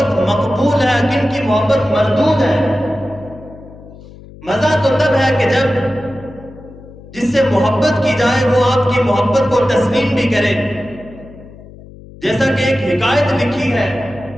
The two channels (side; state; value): left; noise; hum, 19 dB below the sound